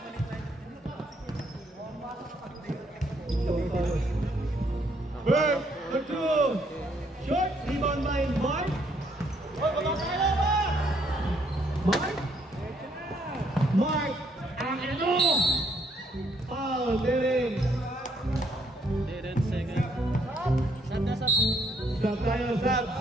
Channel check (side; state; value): both; normal; correlation 0.69